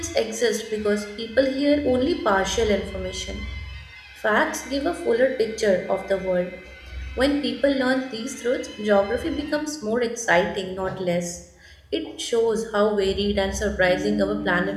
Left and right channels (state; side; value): identical; both; correlation 1.00